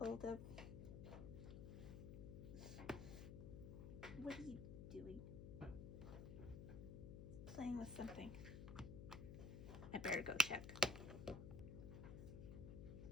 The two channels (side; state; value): left; noise; hum, 7 dB below the sound